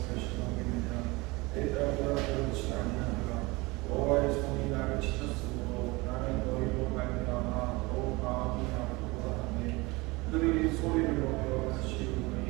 결심하겠느냐. 내 딸들아 그렇지 아니하노라. 여호와의 손이 나를 치셨으므로 나는 너희로 말미암아 더욱 마음이 아프고자 하네. 그들이 소리를 내어 다시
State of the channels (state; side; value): quieter; left; 23.7 dB